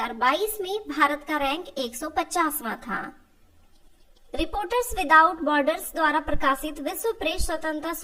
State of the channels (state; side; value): identical; both; correlation 1.00